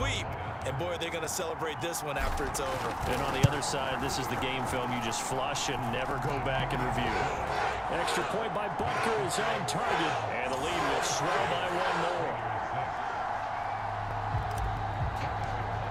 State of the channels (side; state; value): both; identical; correlation 1.00